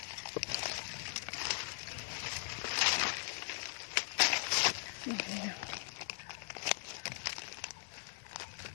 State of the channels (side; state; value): right; silent; 51 dB below the other